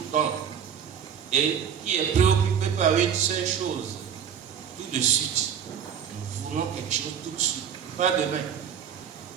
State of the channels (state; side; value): quieter; left; 8.2 dB